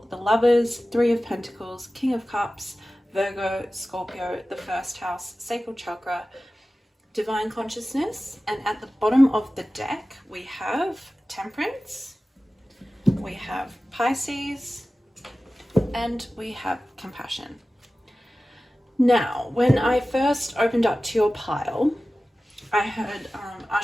the Lovers, 3 of Pentacles, King of Cups, Virgo, Scorpio, the first house, sacral chakra, divine consciousness, and at the bottom of the deck we have Temperance, we have Pisces, and we have Compassion. Now, when I first opened up to your pile, I heard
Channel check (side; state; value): both; normal; correlation 0.96